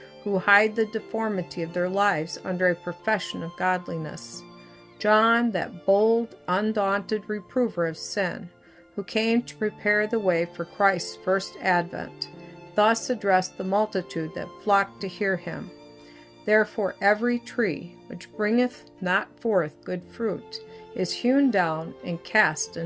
who hide the deformity of their lives under a profession of godliness. John, that bold, undaunted reprover of sin, who came to prepare the way for Christ's first advent, thus addressed the multitude that flocked to hear him. Therefore every tree which bringeth not forth good fruit is hewn down and cast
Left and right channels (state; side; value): identical; both; correlation 1.00